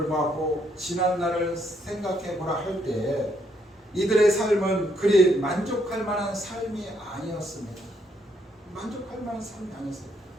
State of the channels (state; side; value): normal; both; correlation 0.73